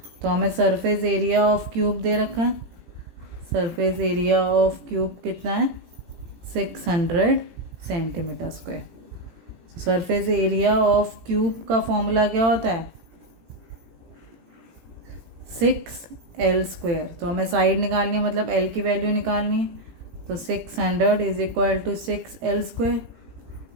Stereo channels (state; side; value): late; left; 18 ms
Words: तो हमें सरफेस एरिया ऑफ क्यूब दे रखा है। सरफेस एरिया ऑफ क्यूब कितना है 600 centimetre square. Surface area of cube का फॉर्मूला क्या होता है 6 एल स्क्वेयर। तो हमें साइड निकालनी है, मतलब एल की वैल्यू निकालनी है। तो 600 is equal to 6 L square.